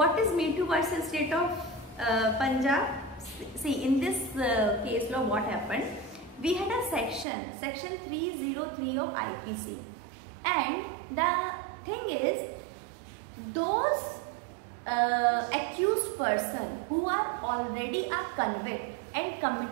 is Meethu versus State of Punjab? See, in this case law, what happened? We had a section 303 of IPC, and the thing is, those accused person who are already a convict and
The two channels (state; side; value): drops out; left; at 7.2 s